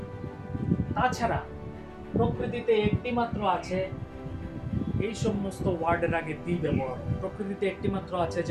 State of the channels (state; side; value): identical; both; correlation 1.00